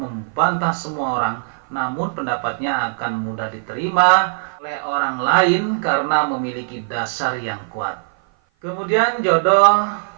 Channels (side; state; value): left; silent; 55 dB below the other